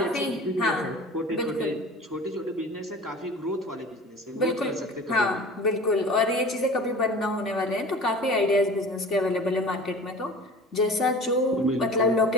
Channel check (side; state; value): both; normal; correlation 0.40